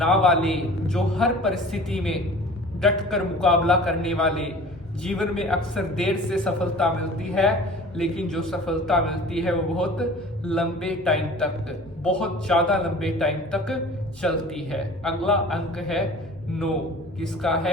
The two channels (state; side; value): normal; both; correlation 0.43